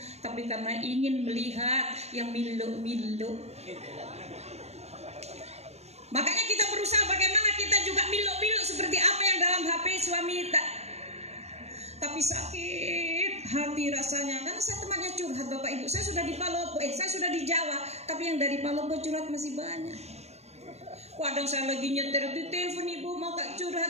tapi karena ingin melihat yang milu-milu. Makanya kita berusaha bagaimana kita juga milu-milu seperti apa yang dalam HP suami tak. Tapi sakit hati rasanya, karena saya temannya curhat Bapak Ibu. Saya sudah di Palopo, saya sudah di Jawa, tapi yang dari Palopo curhat masih banyak. Kadang saya lagi nyetir di telepon Ibu, mau Kak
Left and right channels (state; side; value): late; left; 0.31 ms